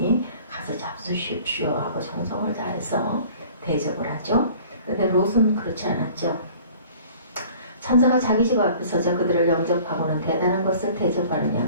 가서 잡수십시오 하고 정성을 다해서 대접을 하죠. 그런데 롯은 그렇지 않았죠. 천사가 자기 집 앞에 서서 그들을 영접하고는 대단한 것을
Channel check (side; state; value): both; inverted; correlation -0.49